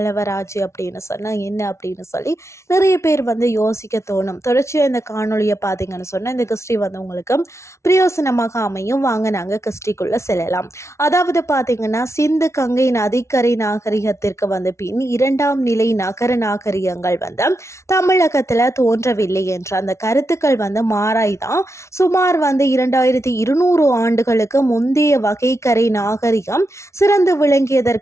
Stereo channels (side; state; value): right; late; 0.13 ms